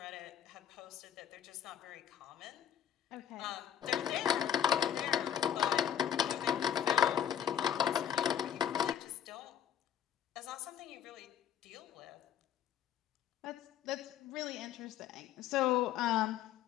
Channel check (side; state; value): right; quieter; 9.6 dB